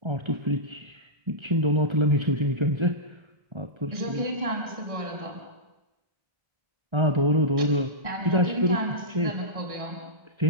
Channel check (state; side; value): late; left; 1.6 ms